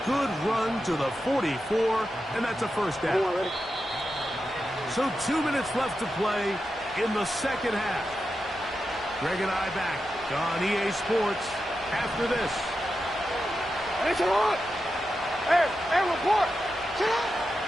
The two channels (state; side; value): normal; both; correlation 0.89